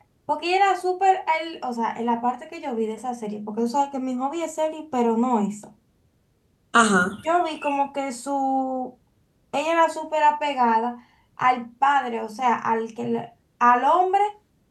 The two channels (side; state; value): both; identical; correlation 1.00